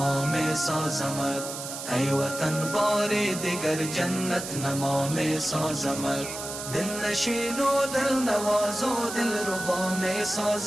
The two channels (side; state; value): right; noise; hiss, 8 dB below the sound